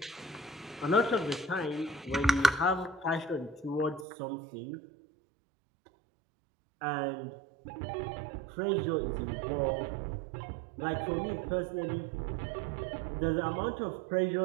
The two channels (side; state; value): left; drops out; at 4.0 s